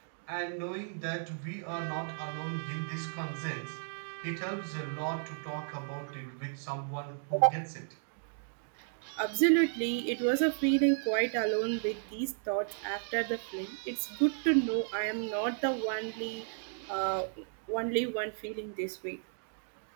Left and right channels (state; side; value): silent; left; digital silence